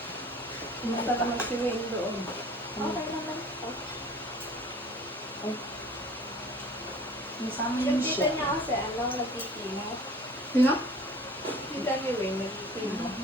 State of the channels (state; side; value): normal; both; correlation 0.46